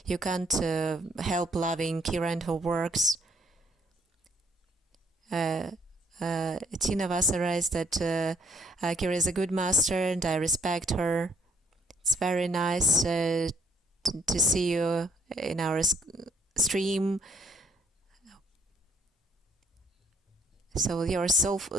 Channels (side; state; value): both; normal; correlation 0.66